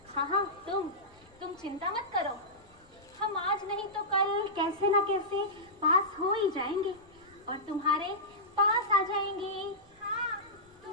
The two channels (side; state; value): left; noise; rumble, 28 dB below the sound